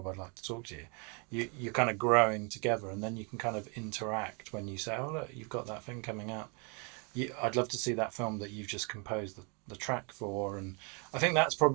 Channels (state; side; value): quieter; left; 34.4 dB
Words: I'd like to talk to you. You're kind of growing together, and then you can kind of interact when you say, oh look, you've got that thing coming up. I'd love to see that film that you've just composed the track for. And I think that's